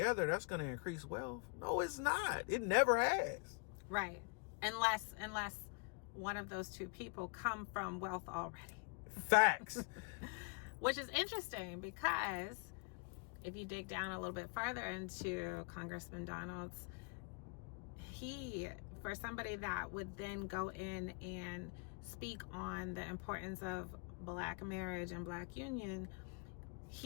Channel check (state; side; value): quieter; right; 34.1 dB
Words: that's going to increase wealth. No, it's not. It never has. Right. Unless one of those two people come from wealth already. Facts. Which is interesting, because if you dig down a little bit farther into Congressman Donald's, for somebody that would then go in and speak on the importance of black marriage and black union,